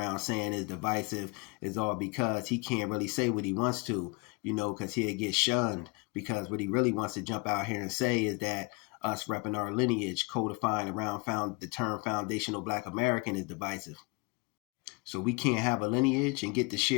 saying is divisive is all because he can't really say what he wants to, because he'll get shunned. Because what he really wants to jump out here and say is that us repping our lineage, codifying around the term foundational Black American is divisive. So we can't have a lineage and get to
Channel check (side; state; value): right; quieter; 28.4 dB